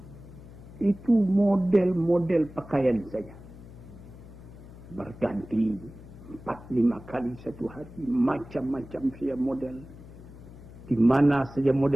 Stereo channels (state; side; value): noise; left; hum, 17 dB below the sound